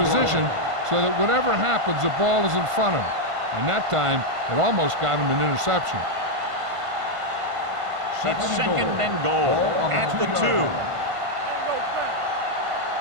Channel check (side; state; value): left; late; 1.5 ms